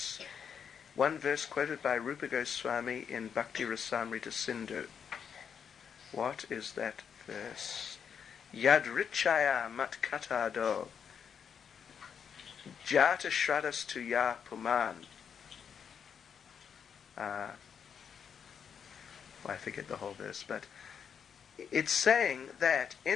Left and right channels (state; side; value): quieter; right; 7.3 dB